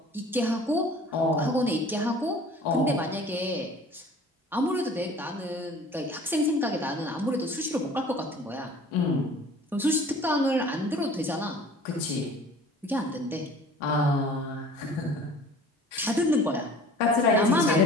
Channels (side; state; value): both; normal; correlation 0.47